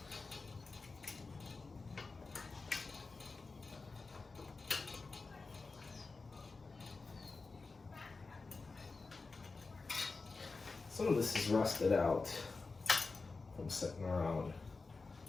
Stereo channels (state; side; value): quieter; right; 4.0 dB